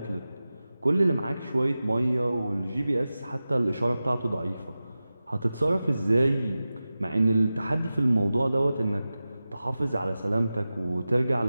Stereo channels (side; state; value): both; inverted; correlation -0.95